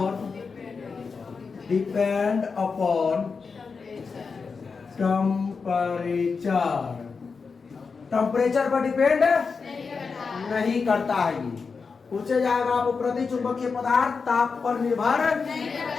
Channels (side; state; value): right; quieter; 5.0 dB